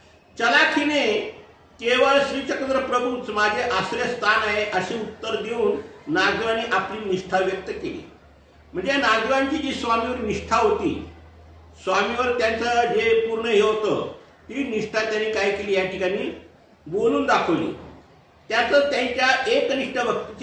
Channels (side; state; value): both; identical; correlation 1.00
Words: चलाखीने केवळ श्री चक्रधर प्रभूच माझे आश्रयस्थान आहे असे उत्तर देऊन नागदेवांनी आपली निष्ठा व्यक्त केली. म्हणजे नागदेवांची जी स्वामीवर निष्ठा होती, स्वामीवर त्यांचं जे पूर्ण हे होतं, ती निष्ठा त्यांनी काय केली या ठिकाणी बोलून दाखवली. त्यातच त्यांच्या एकनिष्ठ